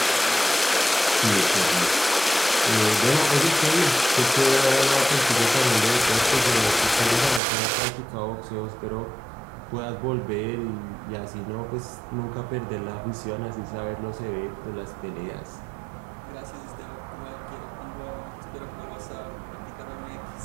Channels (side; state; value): left; drops out; at 7.4 s